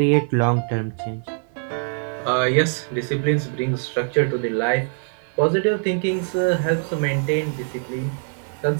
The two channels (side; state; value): left; silent; digital silence